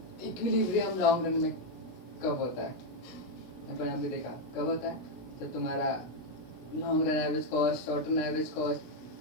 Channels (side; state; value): right; late; 16 ms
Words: Equilibrium long run में कब होता है? अपन अभी देखा कब होता है, जब तुम्हारा long run average cost, short run average cost,